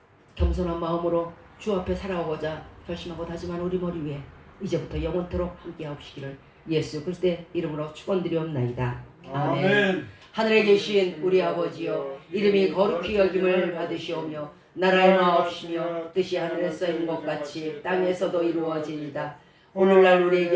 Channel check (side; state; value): both; identical; correlation 1.00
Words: 겸손한 마음으로 주 앞에 살아오고자 결심하고 다짐한 우리 머리 위에 이제부터 영원토록 함께하옵시기를 예수 그리스도의 이름으로 축원드리옵나이다. 아멘. 하늘에 계신 우리 아버지여, 이름이 거룩히 여김을 받으시오며 나라의 마옵시며 뜻이 하늘에서 이룬 것 같이 땅에서도 이루어지이다. 오늘날